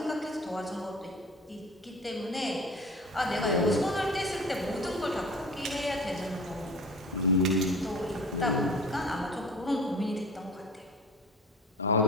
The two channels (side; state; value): both; normal; correlation 0.39